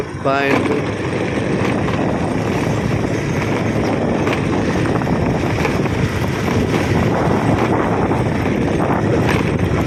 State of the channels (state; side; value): identical; both; correlation 1.00